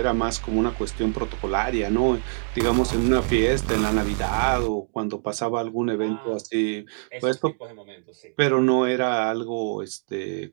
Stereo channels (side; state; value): left; silent; digital silence